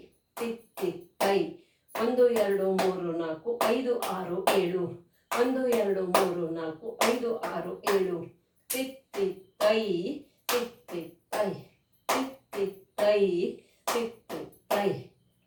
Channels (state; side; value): identical; both; correlation 1.00